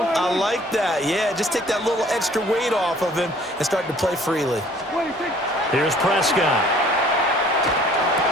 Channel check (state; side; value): normal; both; correlation 0.54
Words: I like that. Yeah, just take that little extra weight off of him and start to play freely. Here's Prescott.